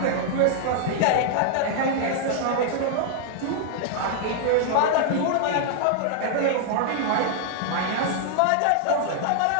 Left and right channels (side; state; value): both; different; correlation -0.01